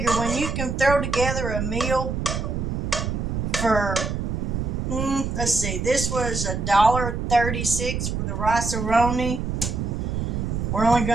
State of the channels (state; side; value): noise; right; rumble, 2 dB below the sound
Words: when you can throw together a meal for, let's see, this was $1.36 for the Roni. We're only